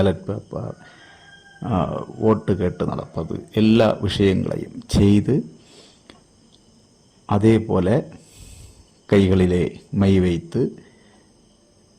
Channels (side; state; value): both; identical; correlation 1.00